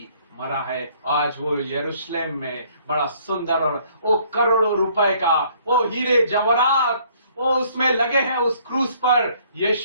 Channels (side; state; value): both; inverted; correlation -0.61